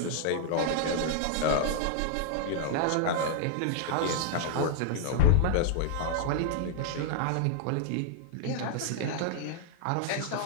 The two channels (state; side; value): different; both; correlation -0.01